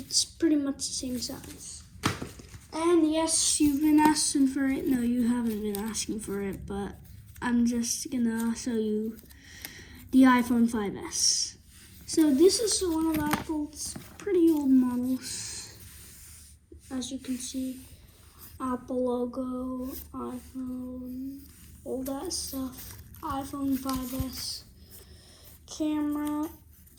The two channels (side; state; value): both; identical; correlation 1.00